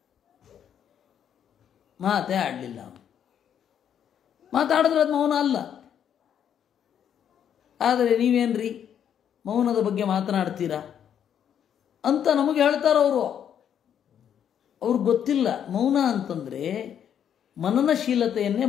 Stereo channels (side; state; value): right; quieter; 9.0 dB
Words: ಮಾತೇ ಆಡಲಿಲ್ಲ. ಮಾತಾಡಿದ್ರೆ ಅದು ಮೌನ ಅಲ್ಲ. ಆದರೆ ನೀವೇನ್ರಿ ಮೌನದ ಬಗ್ಗೆ ಮಾತನಾಡ್ತೀರಾ ಅಂತ ನಮಗೆ ಹೇಳ್ತಾರೆ ಅವರು. ಅವ್ರಿಗೆ ಗೊತ್ತಿಲ್ಲ ಮೌನ ಅಂತಂದರೆ ಮನನಶೀಲತೆಯನ್ನೇ